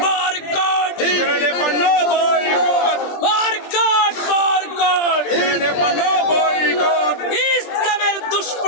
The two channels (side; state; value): right; late; 20 ms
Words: বরকট ইসরায়েলি পণ্য বয়কট বরকট বরকট ইসরায়েলি পণ্য বয়কট ইসলামের